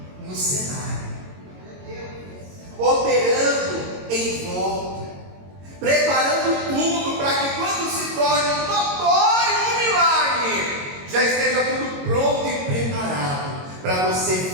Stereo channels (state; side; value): late; left; 22 ms